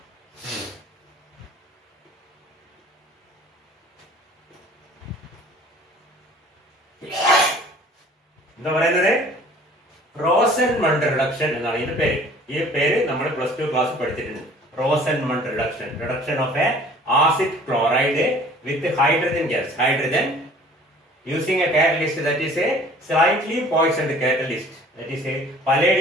എന്താ പറയുന്നത്? റോസൻമണ്ട് റിഡക്ഷൻ എന്നാണ് ഇതിന്റെ പേര്. ഈ പേര് നമ്മൾ +2 ക്ലാസ് പഠിച്ചിട്ടുണ്ട്. റോസൻമണ്ട് reduction, reduction of A acid chloride with hydrogen gas, hydrogen using a catalyst that is a slightly poisoned catalyst, that is a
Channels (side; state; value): both; normal; correlation 0.50